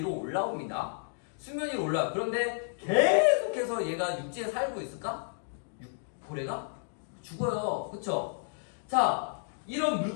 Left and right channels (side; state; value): right; silent; digital silence